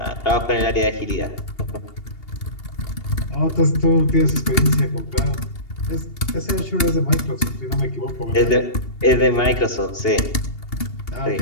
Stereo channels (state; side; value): late; right; 2.8 ms